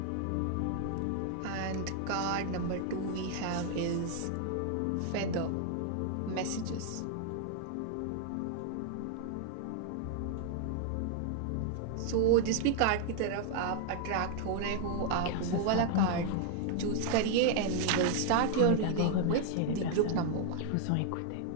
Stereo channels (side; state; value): both; different; correlation 0.00